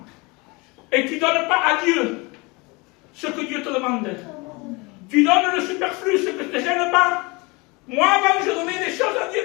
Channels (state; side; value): quieter; right; 26.5 dB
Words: Et tu ne donnes pas à Dieu ce que Dieu te demande. Tu donnes le superflu, ce que ne te gêne pas. Moi, avant, je donnais des choses à Dieu